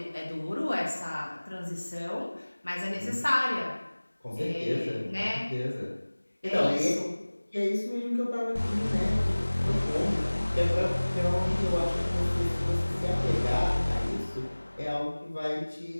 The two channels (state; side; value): inverted; both; correlation -1.00